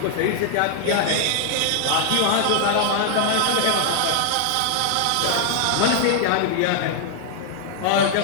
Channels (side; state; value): both; different; correlation 0.00